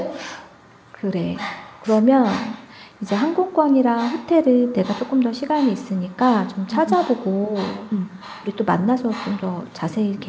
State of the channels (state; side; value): identical; both; correlation 1.00